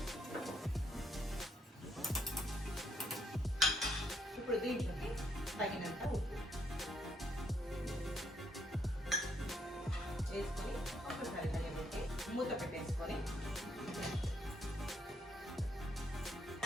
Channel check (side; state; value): both; normal; correlation 0.73